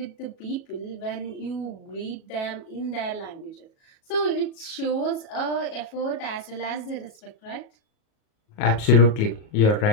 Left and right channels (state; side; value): late; right; 37 ms